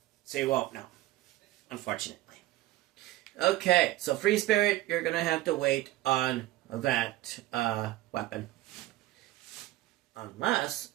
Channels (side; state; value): left; quieter; 16.4 dB